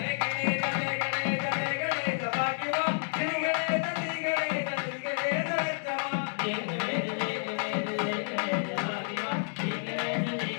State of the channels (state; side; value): silent; right; digital silence